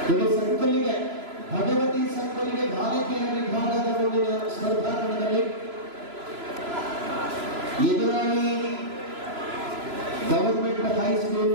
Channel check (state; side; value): late; left; 3.0 ms